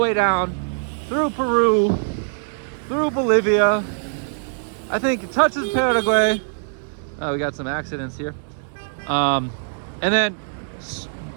down through Peru, through Bolivia. I think it touches Paraguay. We got some accidents here. And then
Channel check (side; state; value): left; silent; digital silence